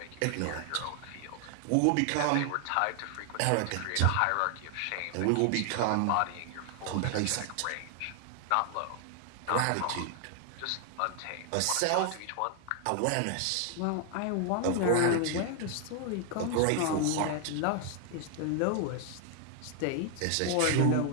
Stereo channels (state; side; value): different; both; correlation 0.00